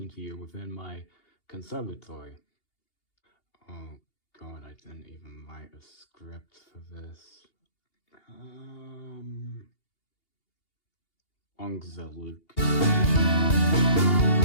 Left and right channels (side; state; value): right; late; 2.8 ms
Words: to you within my conservatory. Oh god, I didn't even write a script for this. Ongezellig.